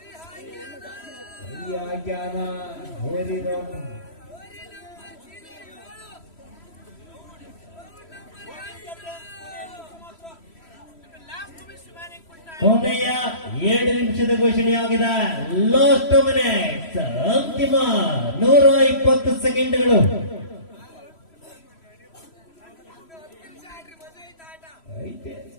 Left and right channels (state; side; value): late; right; 3.1 ms